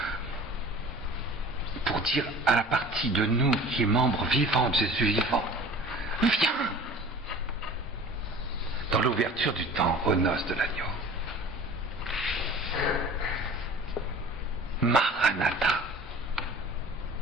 pour dire à la partie de nous qui est membre vivant de Jésus vivant, viens dans l'ouverture du temps aux noces de l'agneau. Maranatha.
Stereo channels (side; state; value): both; normal; correlation 0.43